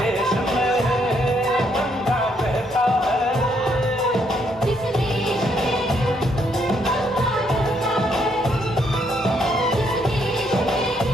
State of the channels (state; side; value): normal; both; correlation 0.72